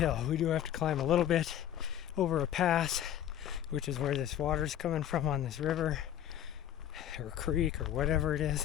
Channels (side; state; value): right; quieter; 11.0 dB